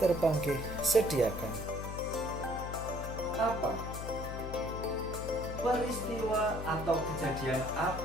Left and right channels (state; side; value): noise; left; hum, 7 dB below the sound